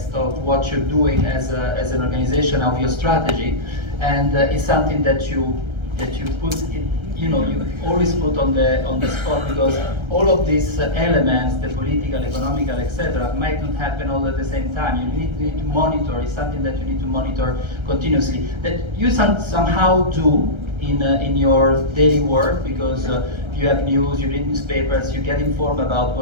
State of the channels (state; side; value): late; left; 1.3 ms